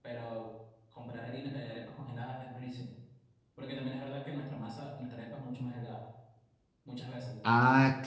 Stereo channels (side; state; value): both; identical; correlation 1.00